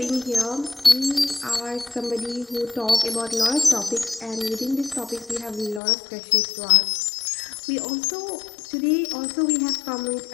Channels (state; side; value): drops out; right; at 5.8 s